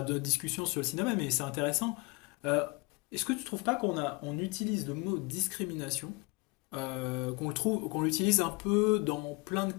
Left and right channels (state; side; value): quieter; right; 27.3 dB